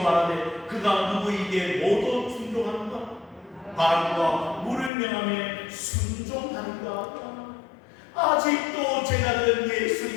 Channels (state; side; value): drops out; right; at 4.9 s